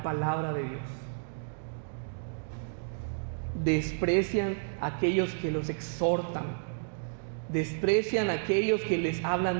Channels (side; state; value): left; silent; digital silence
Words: palabra de Dios. Desprecian a aquellos que los exhortan. Desprecian a aquellos que les